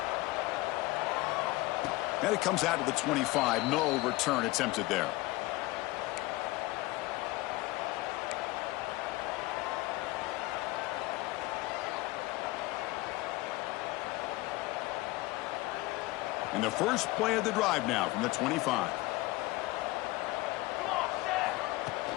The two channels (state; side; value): quieter; right; 20.2 dB